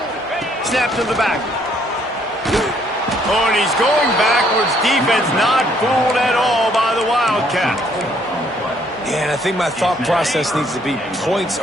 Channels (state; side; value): normal; both; correlation 0.66